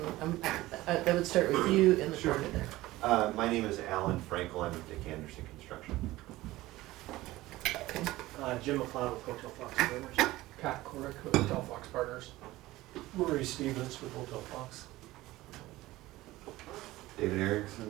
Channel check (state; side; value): quieter; left; 17.7 dB